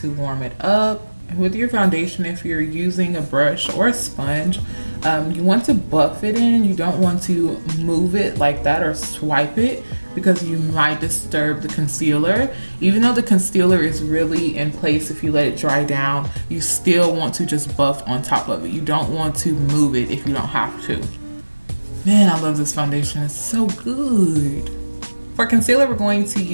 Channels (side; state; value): both; inverted; correlation -1.00